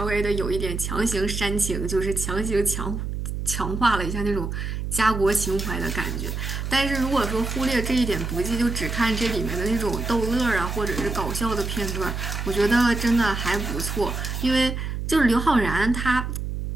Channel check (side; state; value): right; noise; hum, 4 dB below the sound